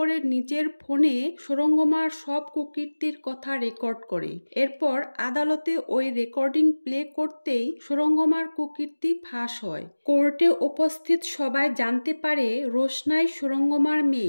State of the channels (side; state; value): both; inverted; correlation -1.00